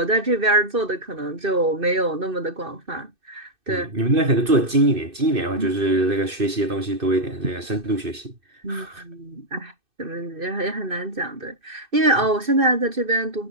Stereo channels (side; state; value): left; late; 2.6 ms